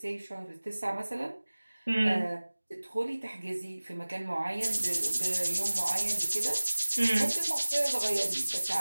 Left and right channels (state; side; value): inverted; both; correlation -1.00